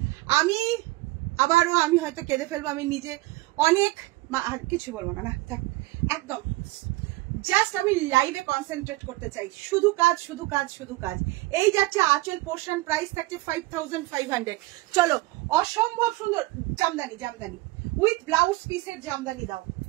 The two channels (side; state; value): left; quieter; 20.0 dB